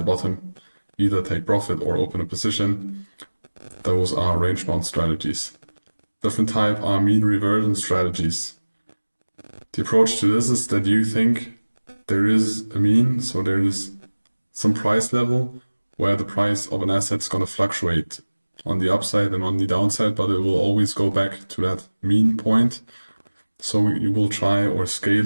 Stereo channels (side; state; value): both; inverted; correlation -1.00